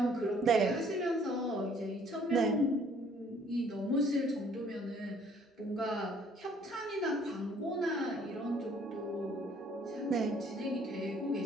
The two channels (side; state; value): both; normal; correlation 0.60